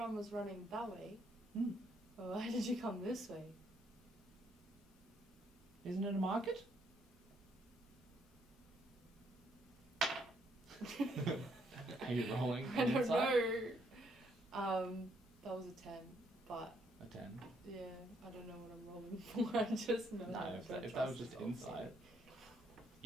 was running that way, Hmm. well, why did you come this way? Isn't it a market? Are you rolling? I don't insight? know. That was a 10, but A 10. yeah, I don't know what I'm rolling for. I just know. No, that if I that was trust just this old insight, lady.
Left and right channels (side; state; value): both; normal; correlation 0.72